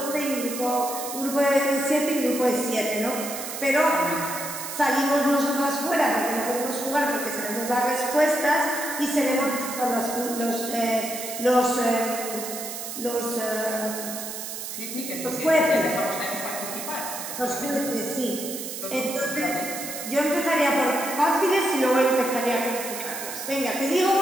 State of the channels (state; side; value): noise; right; hiss, 7 dB below the sound